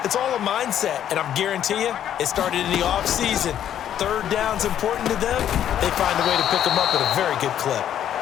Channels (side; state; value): right; quieter; 10.4 dB